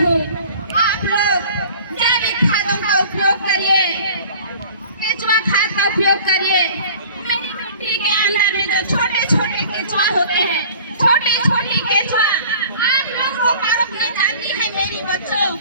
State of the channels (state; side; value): inverted; both; correlation -0.46